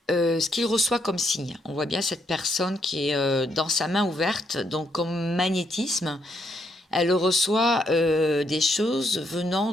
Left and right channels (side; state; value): both; normal; correlation 0.75